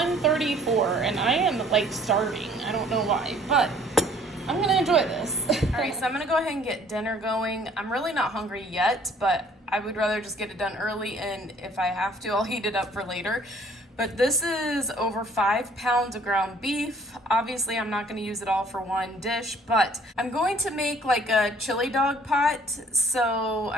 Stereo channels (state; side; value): normal; both; correlation 0.56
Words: and I am like starving. I don't know why, but I'm gonna enjoy this. All right, so I'm gonna go ahead and get dinner going. I'm really not hungry yet, but I would rather just get it done early, and if I have to, I'll heat it up for later. But this is over 5 pounds of ground beef. Obviously, I'm not gonna use it all for one dish, but I'm going to make like a chili dog pot. So